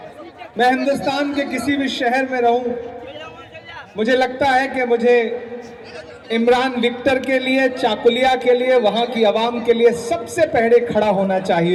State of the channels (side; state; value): both; identical; correlation 1.00